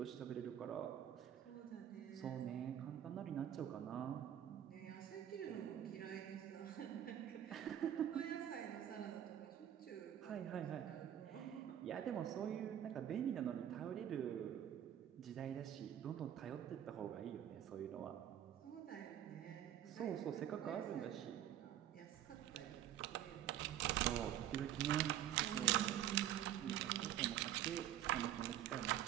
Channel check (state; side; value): quieter; left; 11.1 dB